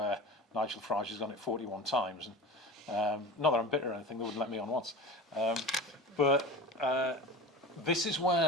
Nigel Farage has done it 41 times. And, not that I'm bitter or anything, they wouldn't let me on once. But this is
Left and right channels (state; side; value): normal; both; correlation 0.32